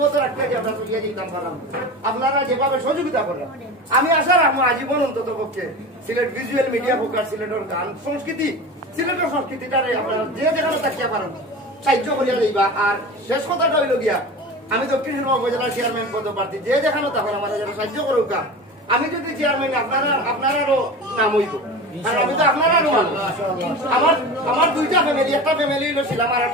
রাখতে আমরা চলিয়া যেতাম পারলাম, আপনারা যেভাবে সহযোগিতা করেন আমি আশা রাখবো আজীবন অন্তত পক্ষে সিলেট ভিজুয়াল মিডিয়া ফোকাস সিলেটের গান সংস্কৃতি সিলেটের সংস্কৃতিটারে আপনারা যে যেখানে তাকিয়া পারেন সাহায্য করিয়া যাইবা। আর শেষ কথাটা হইল গিয়া, আমি দক্ষিণ সুরমা উপজেলার চেয়ারম্যান পদপ্রার্থী, যে যেখানে তখন আমাদের যারা সাহায্য করুক, আমি যদি চেয়ারম্যান আপনারারও নাম হইব, কারণ আমি তো আপনারারও মানুষ। আমার 2টা ফ্যামিলি, একটা ফ্যামিলি হইলো ছিলাম আর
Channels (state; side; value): normal; both; correlation 0.32